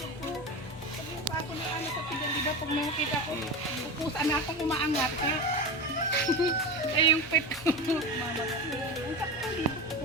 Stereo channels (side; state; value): both; normal; correlation 0.24